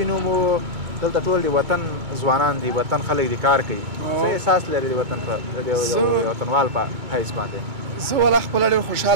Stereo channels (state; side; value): late; left; 2.3 ms